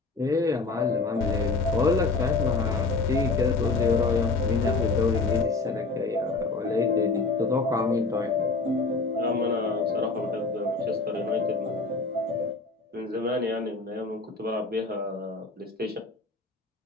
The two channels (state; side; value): quieter; right; 3.9 dB